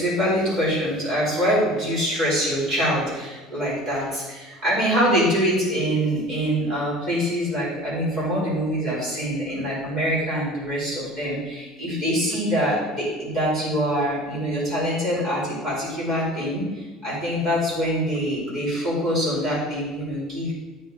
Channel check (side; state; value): both; normal; correlation 0.42